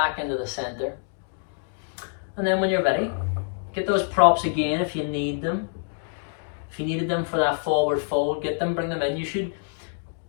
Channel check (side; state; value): right; silent; digital silence